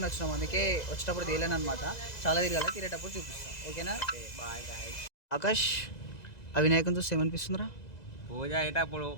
వచ్చినాము. అందుకే వచ్చేటప్పుడు తీయలేను అనమాట. చాలా తిరగాలి, తిరిగేటప్పుడు చూపిస్తాం. ఓకేనా? Bye guys. ఆకాష్, ఆ వినాయకుని చూస్తే ఏమనిపిస్తుందిరా? పూజ అయ్యేటప్పుడు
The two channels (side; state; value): right; late; 2.0 ms